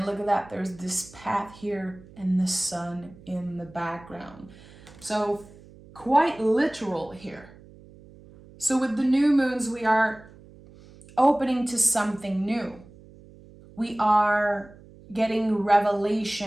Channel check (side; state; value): right; noise; hum, 22 dB below the sound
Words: look at that. There's this path here and the Sun in the background. So quite literal here. So with the new moons, we are opening to something new. We are getting